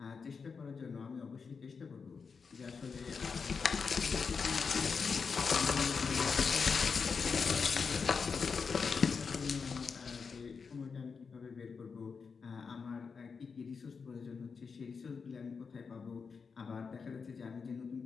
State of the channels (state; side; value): quieter; right; 5.4 dB